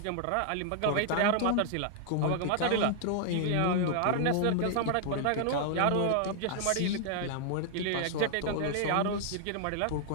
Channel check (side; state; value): both; different; correlation -0.01